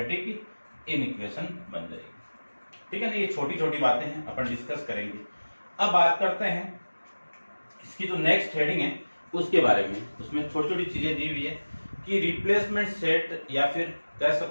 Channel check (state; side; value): inverted; both; correlation -1.00